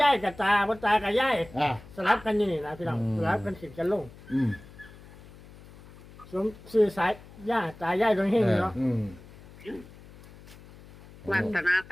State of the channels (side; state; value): left; noise; hum, 20 dB below the sound